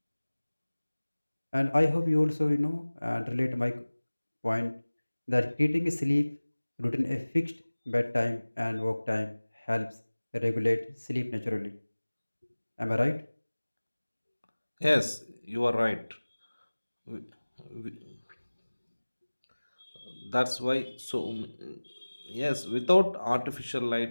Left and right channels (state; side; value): inverted; both; correlation -1.00